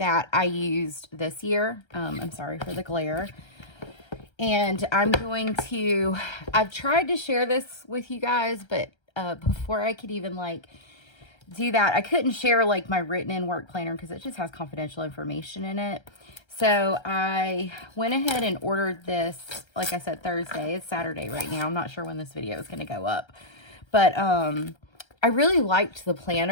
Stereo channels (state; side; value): late; right; 1.3 ms